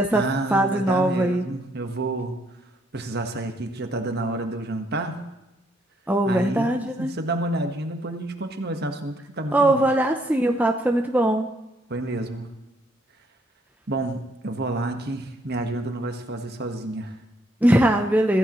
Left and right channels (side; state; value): both; normal; correlation 0.71